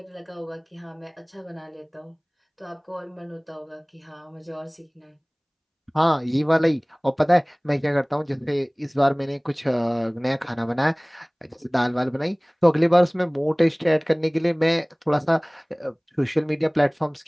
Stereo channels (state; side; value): identical; both; correlation 1.00